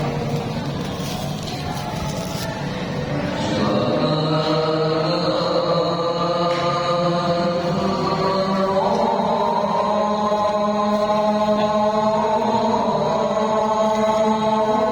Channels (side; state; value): both; identical; correlation 1.00